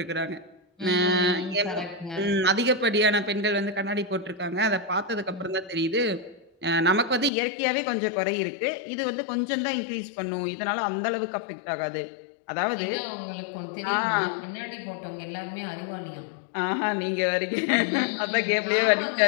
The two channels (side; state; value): right; drops out; at 7.3 s